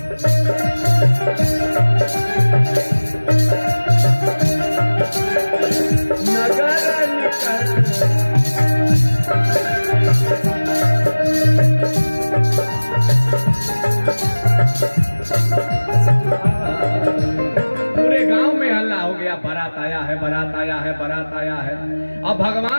नगर निकट पूरे गांव में हल्ला हो गया, बारात आया है, बारात आया है, बारात आया है। अब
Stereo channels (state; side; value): inverted; both; correlation -1.00